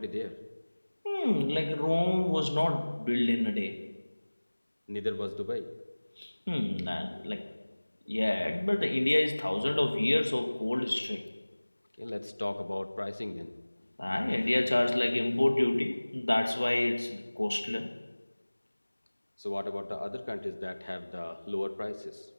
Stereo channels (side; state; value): both; inverted; correlation -1.00